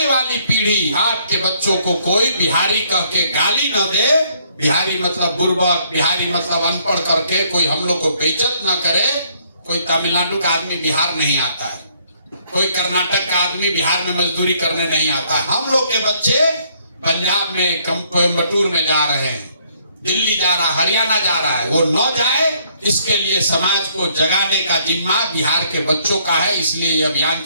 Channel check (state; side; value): inverted; both; correlation -0.67